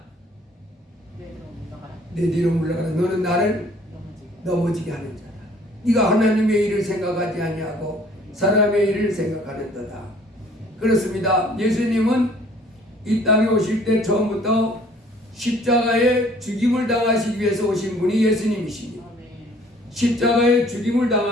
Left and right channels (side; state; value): both; normal; correlation 0.56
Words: 내 뒤로 물러가라. 너는 나를 넘어지게 하는 자다. 네가 하나님의 일을 생각하지 아니하고 사람의 일을 생각하는도다. 그렇습니다. 예수님은 이 땅에 오실 때 처음부터 십자가에 죽임을 당하시기 위해서 오신 분이 예수님이십니다. 십자가에 죽임을